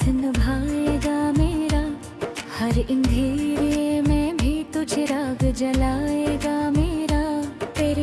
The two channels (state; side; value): identical; both; correlation 1.00